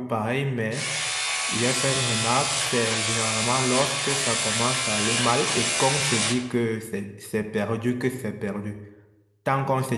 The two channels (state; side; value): identical; both; correlation 1.00